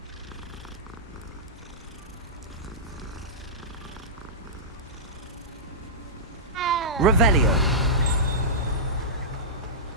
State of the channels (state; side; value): normal; both; correlation -0.14